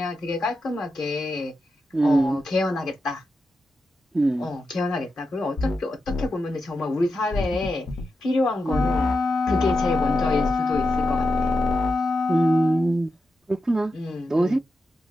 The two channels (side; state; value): both; normal; correlation 0.88